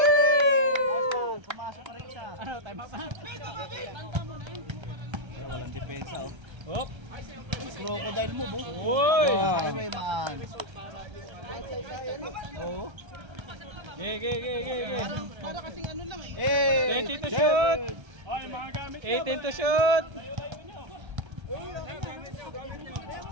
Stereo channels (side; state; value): left; late; 1.3 ms